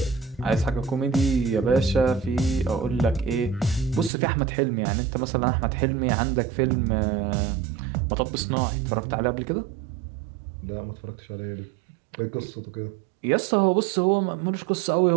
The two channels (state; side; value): drops out; left; at 4.1 s